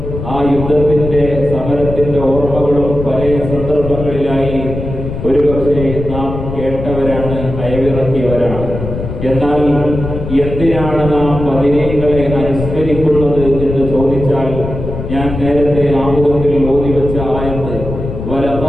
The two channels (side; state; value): left; noise; rumble, 7 dB below the sound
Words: ആ യുദ്ധത്തിന്റെ സമരത്തിന്റെ ഓർമ്മകളും പല സന്ദർഭങ്ങളിലായി ഒരുപക്ഷെ നാം കേട്ടവരാണ്, അയവിറക്കിയവരാണ്. എന്നാൽ എന്തിനാണ് നാം ബദരീങ്ങളെ അനുസ്മരിക്കുന്നത് എന്ന് ചോദിച്ചാൽ, ഞാൻ നേരത്തെ ആമുഖത്തിൽ ഓതിവെച്ച ആയത്ത്